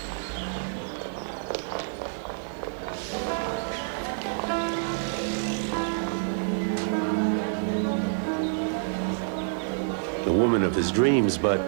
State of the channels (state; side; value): silent; left; 60 dB below the other